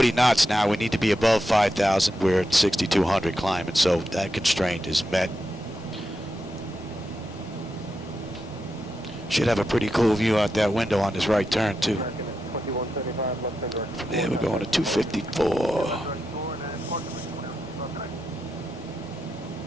knots now. We need to be above 5,000. We're at 6,200 climbing, so that constraint is met. Should have a pretty cool view out that window on this right turn, too. From there, we're going to 254.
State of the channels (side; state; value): both; normal; correlation 0.87